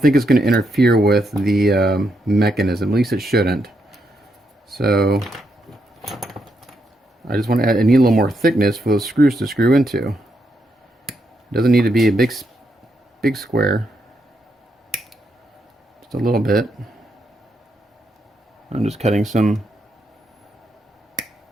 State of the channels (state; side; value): normal; both; correlation 0.80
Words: think it's going to interfere with the mechanism. At least it shouldn't. So... I just want to add, I need a little more thickness for those screws to screw into. It doesn't need to be a big square. Just a little bit. I'm just cutting just a